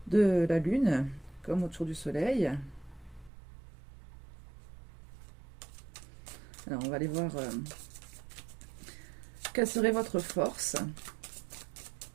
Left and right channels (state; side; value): drops out; left; at 3.3 s